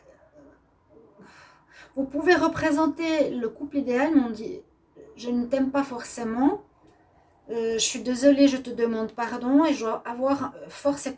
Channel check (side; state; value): both; identical; correlation 1.00